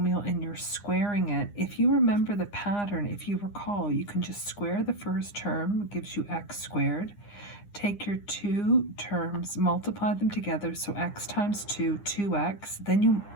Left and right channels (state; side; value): late; right; 9.8 ms